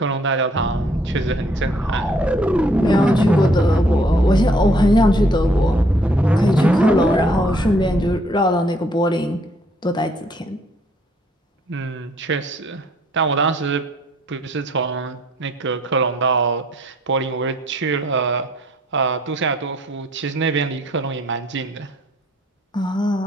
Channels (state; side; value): normal; both; correlation 0.64